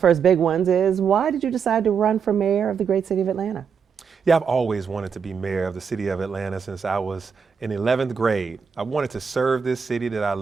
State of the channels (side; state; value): left; quieter; 6.4 dB